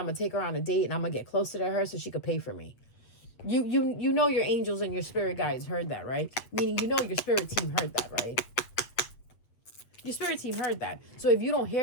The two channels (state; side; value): late; right; 8.5 ms